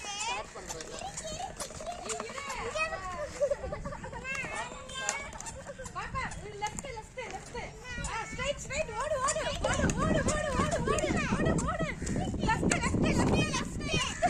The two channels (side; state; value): both; identical; correlation 1.00